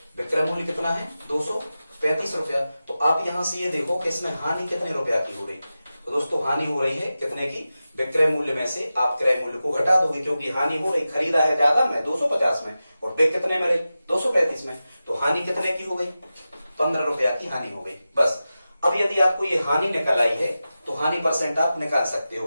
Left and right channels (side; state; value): both; inverted; correlation -0.93